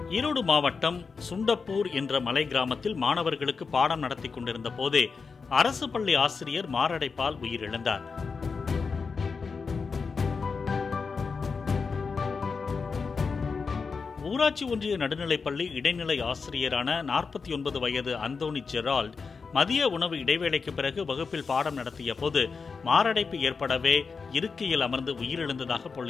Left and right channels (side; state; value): right; quieter; 5.0 dB